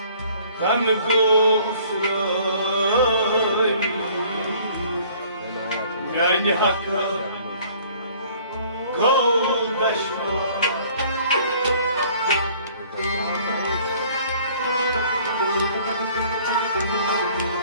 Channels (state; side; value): inverted; both; correlation -0.55